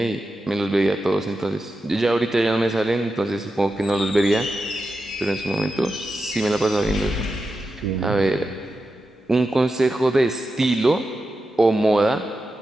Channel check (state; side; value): normal; both; correlation 0.90